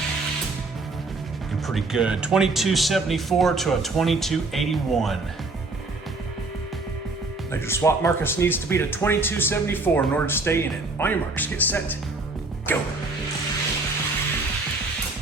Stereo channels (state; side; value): quieter; left; 3.4 dB